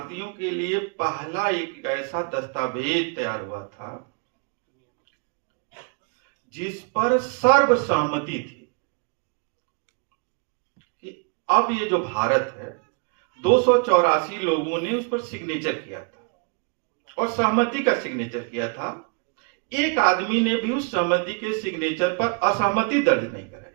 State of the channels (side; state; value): left; quieter; 36.2 dB